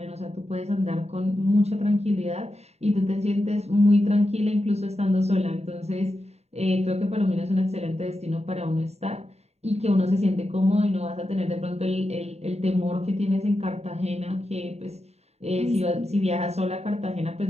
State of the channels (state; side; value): late; left; 0.31 ms